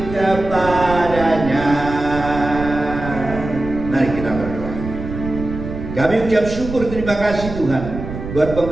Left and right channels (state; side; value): noise; right; rumble, 9 dB below the sound